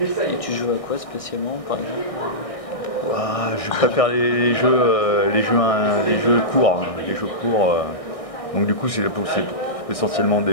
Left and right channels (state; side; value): late; right; 1.6 ms